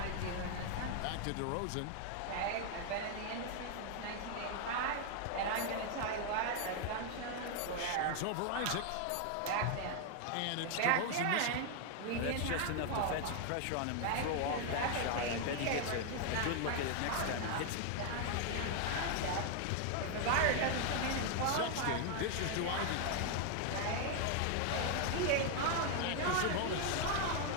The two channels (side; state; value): both; different; correlation 0.00